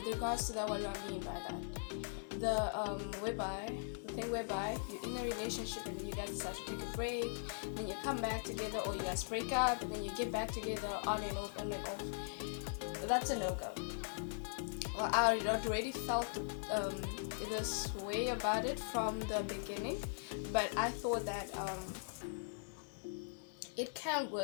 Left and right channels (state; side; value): silent; right; 51 dB below the other